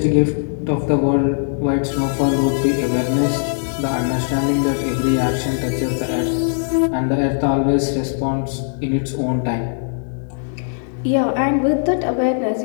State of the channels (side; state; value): right; silent; digital silence